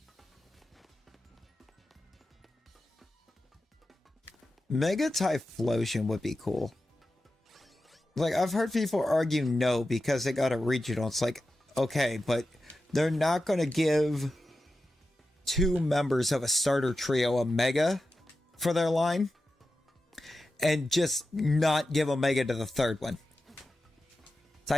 Mega Typhlosion would be cool. Like, I've heard people argue no because they got a regional. It's like, okay, but they're not going to give 2 members of a starter trio a Mega for their line and just not give a Mega to the third one.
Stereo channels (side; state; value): both; normal; correlation 0.92